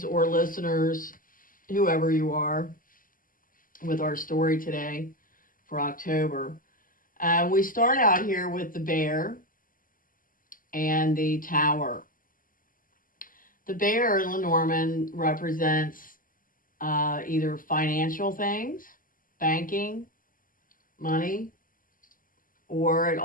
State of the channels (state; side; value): late; right; 0.40 ms